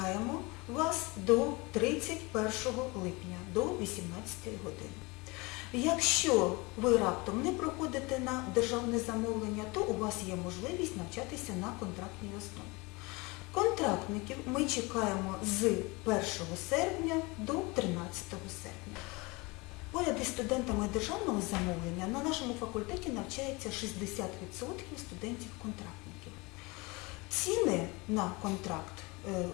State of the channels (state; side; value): quieter; right; 25.5 dB